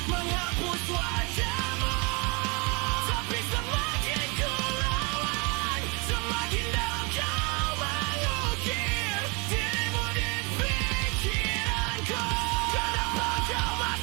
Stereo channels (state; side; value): quieter; left; 30.5 dB